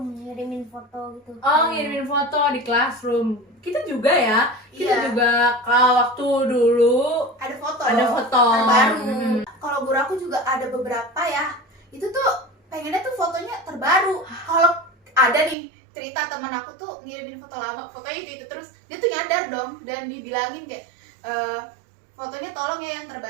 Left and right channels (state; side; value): drops out; left; at 15.6 s